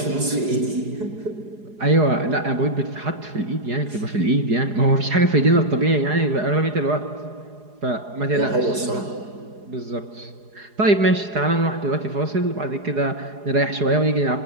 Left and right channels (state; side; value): late; left; 4.8 ms